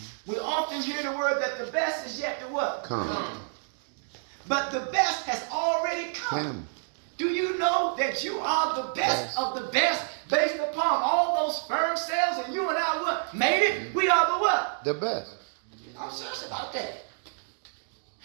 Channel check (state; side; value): silent; left; digital silence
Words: We often hear the word that the best is yet to what? Come. But the best has already come. Do you know that you are the best of the best based upon all those sperm cells, and you and I what? Made it? We are the what? The best. I'm serious about that.